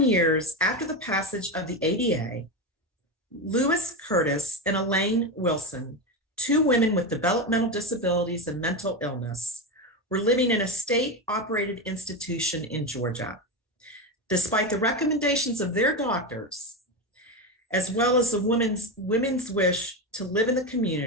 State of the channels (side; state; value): both; normal; correlation 0.15